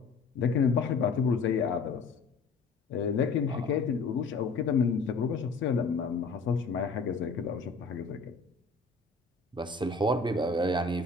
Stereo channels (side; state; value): right; quieter; 4.2 dB